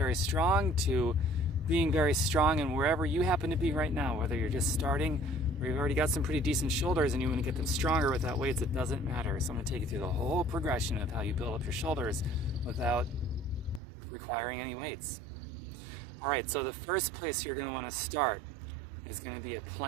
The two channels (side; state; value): left; drops out; at 13.8 s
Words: strong to being very strong, and wherever you happen to be right now, whether you're just starting or you've already got some pretty decent shoulders and you want to get them stronger without weights, it doesn't matter. So I'm going to take you through the whole progression of how you build up your shoulders without requiring any weights. All right, so the first place you're going to want to start is going to be a